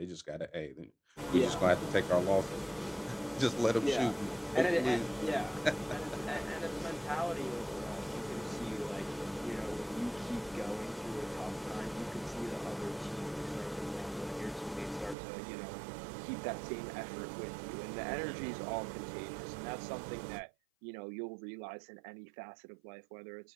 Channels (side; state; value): left; drops out; at 15.2 s